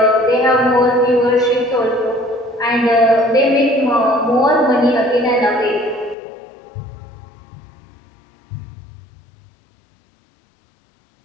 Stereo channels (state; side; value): drops out; right; at 6.2 s